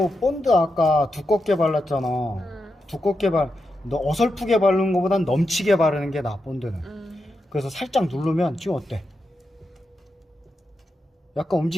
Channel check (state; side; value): normal; both; correlation 0.87